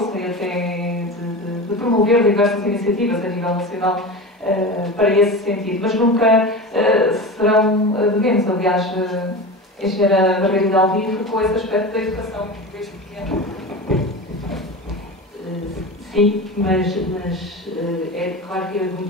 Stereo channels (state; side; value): normal; both; correlation 0.28